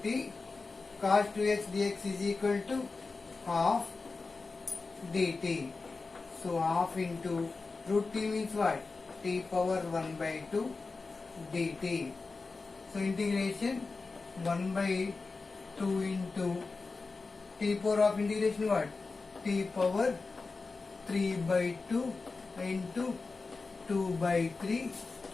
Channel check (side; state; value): right; quieter; 4.0 dB